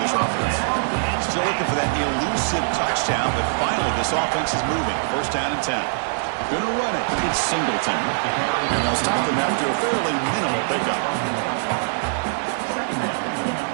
this offense. Still looking for that elusive touchdown, but finally this offense is moving. First down and 10. Gonna run it. It's Singleton. And they'll stop him after a fairly minimal pickup.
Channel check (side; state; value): left; silent; digital silence